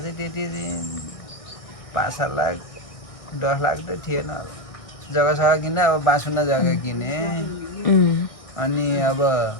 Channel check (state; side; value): late; right; 1.6 ms